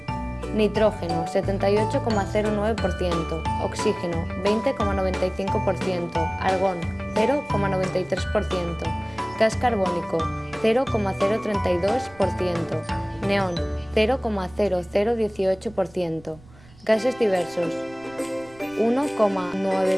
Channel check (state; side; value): noise; right; rumble, 24 dB below the sound